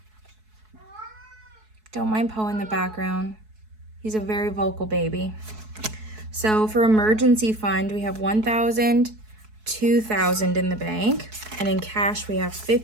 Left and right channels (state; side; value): late; left; 4.7 ms